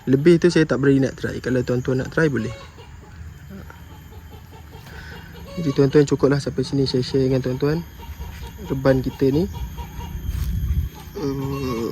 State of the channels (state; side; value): identical; both; correlation 1.00